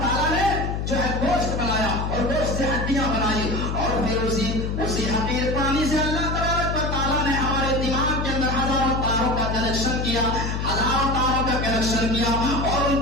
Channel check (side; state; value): left; noise; hum, 2 dB below the sound